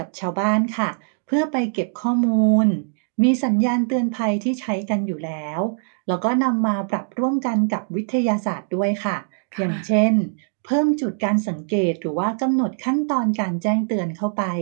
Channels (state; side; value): silent; left; digital silence